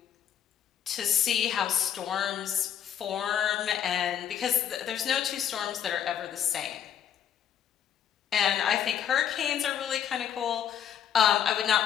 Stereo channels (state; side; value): quieter; right; 9.2 dB